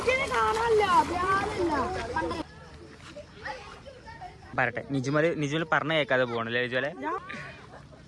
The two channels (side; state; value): both; identical; correlation 1.00